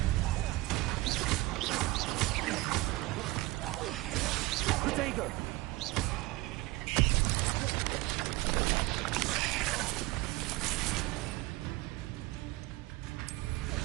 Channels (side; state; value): left; quieter; 20.2 dB